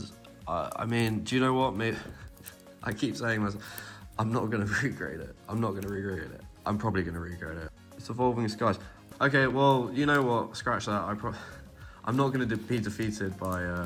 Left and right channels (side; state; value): both; identical; correlation 1.00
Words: I mean, do you know what? Maybe I keep saying myself, I'm not going to regrade it. I'm not going to regrade it. I'm probably going to regrade it. It's Evolving Skies. Okay, well, you know what? Scratch that. I'm not going to be defeated by